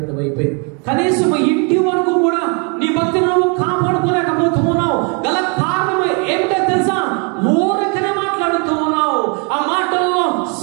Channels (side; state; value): left; quieter; 35.4 dB